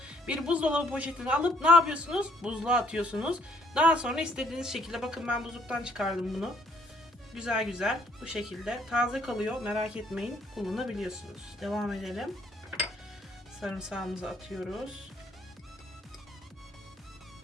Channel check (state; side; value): normal; both; correlation 0.65